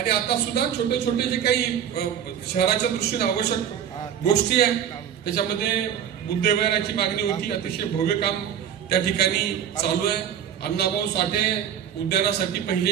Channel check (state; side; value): quieter; left; 9.0 dB